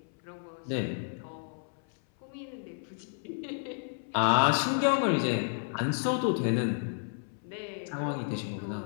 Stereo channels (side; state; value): right; silent; 57 dB below the other